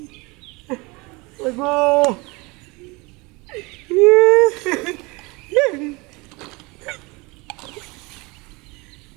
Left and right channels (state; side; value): quieter; left; 25.5 dB